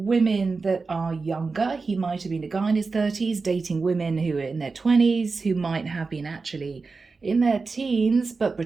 that are younger. He might have been a guy in his 30s dating women who are in their 20s, who might have been actually in their teens but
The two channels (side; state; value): left; quieter; 4.2 dB